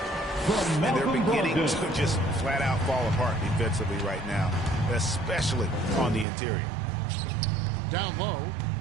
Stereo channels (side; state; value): left; drops out; at 6.2 s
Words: And they're beginning to just flat out fall apart defensively right now, especially on the interior. Down low.